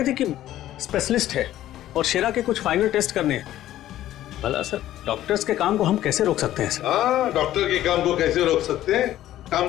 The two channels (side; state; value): right; quieter; 13.4 dB